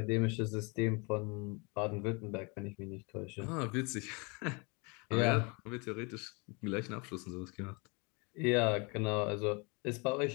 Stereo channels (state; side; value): quieter; right; 30.3 dB